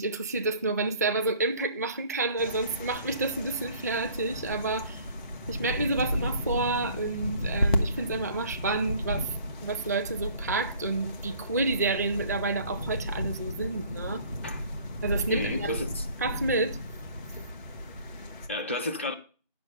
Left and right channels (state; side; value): inverted; both; correlation -0.53